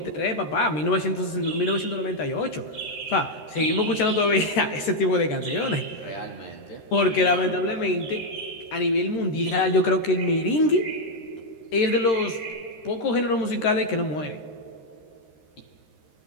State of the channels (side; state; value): right; late; 13 ms